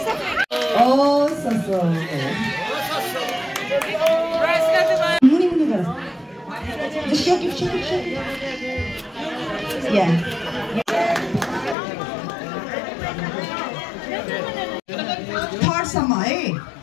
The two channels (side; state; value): right; drops out; at 11.8 s